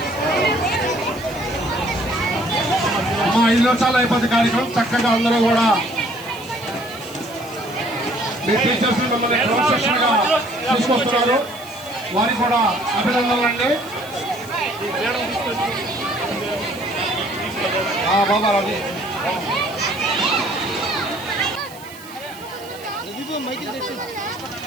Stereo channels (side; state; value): right; noise; hiss, 19 dB below the sound